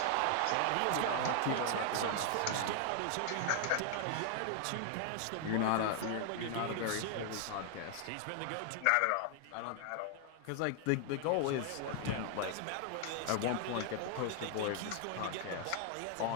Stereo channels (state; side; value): different; both; correlation 0.00